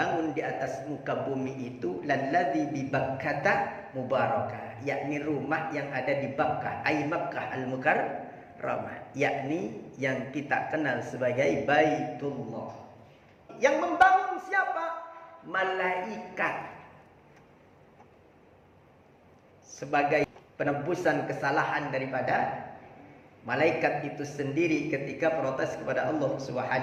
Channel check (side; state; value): both; identical; correlation 1.00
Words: di atas muka bumi itu lalladzi bi Bakkah mubarakah, yakni rumah yang ada di Bakkah, ai Makkah al-Mukarramah, yakni yang kita kenal sebagai Baitullah. Yang membangun siapa? Malaikat. Sebagai penebusan kesalahan daripada malaikat itu sendiri ketika protes kepada Allah